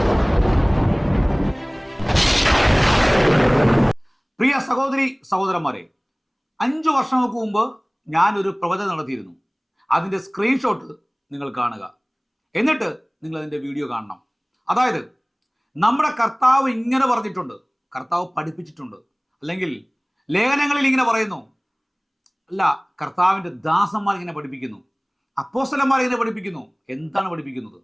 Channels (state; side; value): identical; both; correlation 1.00